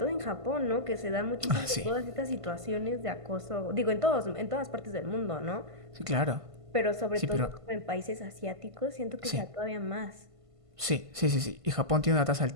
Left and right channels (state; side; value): late; left; 1.5 ms